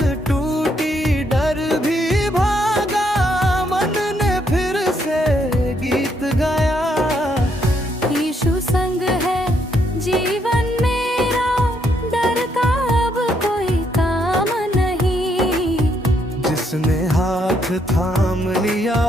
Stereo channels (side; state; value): both; normal; correlation 0.74